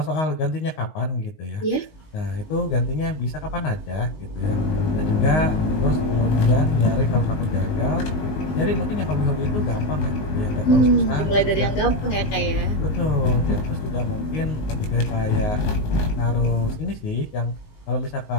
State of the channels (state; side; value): late; right; 19 ms